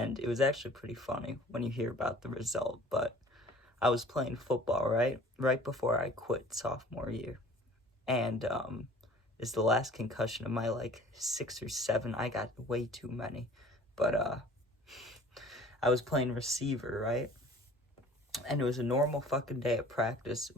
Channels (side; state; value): both; normal; correlation 0.49